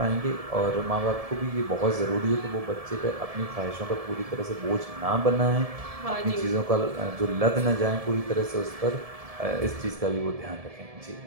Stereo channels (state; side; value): late; left; 1.7 ms